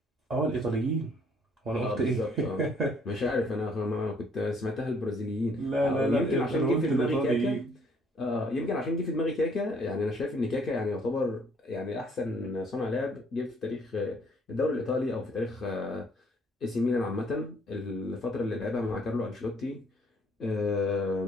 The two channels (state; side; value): normal; both; correlation 0.62